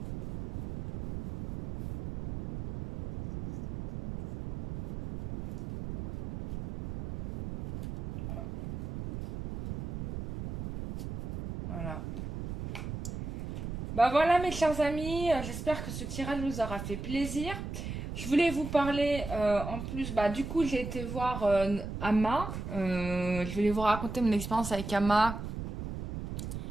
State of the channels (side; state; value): right; noise; rumble, 7 dB below the sound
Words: Voilà. Bah voilà mes chers amis, j'espère que ce tirage vous aura fait plaisir. Je voulais vous parler en plus, bah du coup j'ai été voir Ama. Je voulais vous raconter mon expérience avec Ama